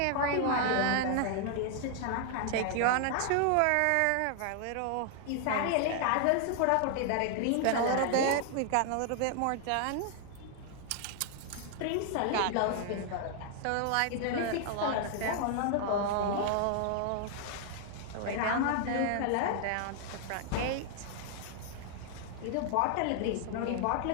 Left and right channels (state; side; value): different; both; correlation 0.00